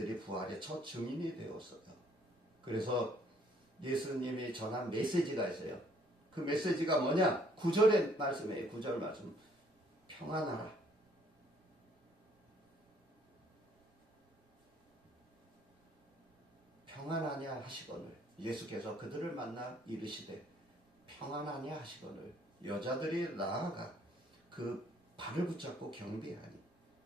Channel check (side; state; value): both; normal; correlation 0.64